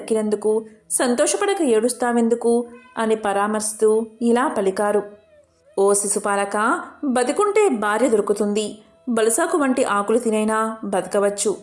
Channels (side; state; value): both; identical; correlation 1.00